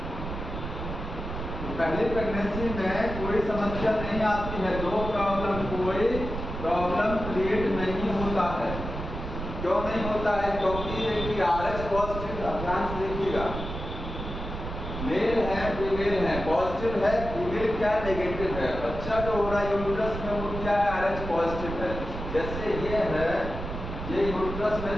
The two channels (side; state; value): right; noise; rumble, 7 dB below the sound